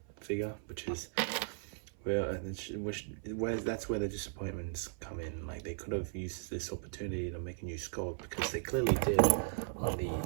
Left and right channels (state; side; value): silent; left; 53 dB below the other